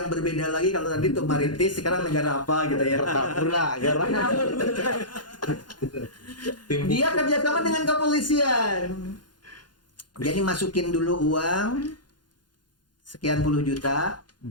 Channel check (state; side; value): late; right; 0.71 ms